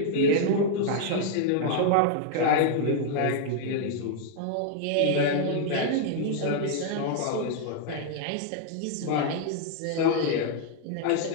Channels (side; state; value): both; different; correlation -0.01